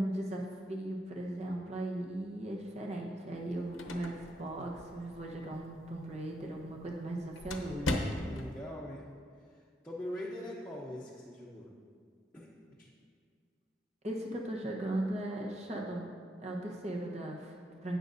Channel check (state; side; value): normal; both; correlation 0.78